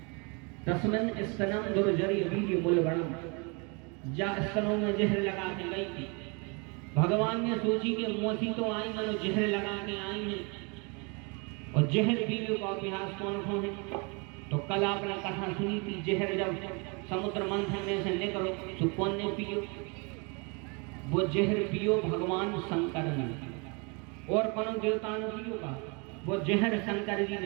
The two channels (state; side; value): quieter; left; 31.7 dB